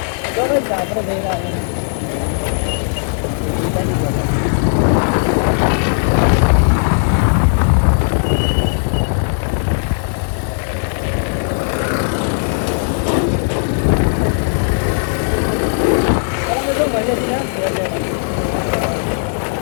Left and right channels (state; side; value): silent; right; digital silence